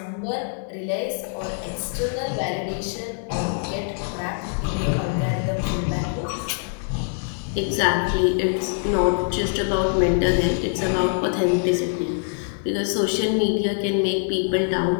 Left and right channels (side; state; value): right; silent; 63 dB below the other